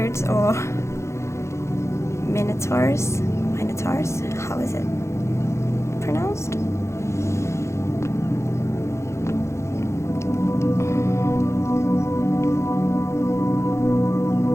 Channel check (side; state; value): right; late; 0.13 ms